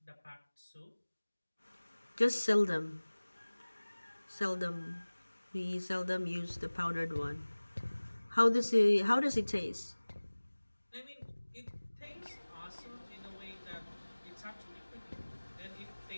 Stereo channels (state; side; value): inverted; both; correlation -1.00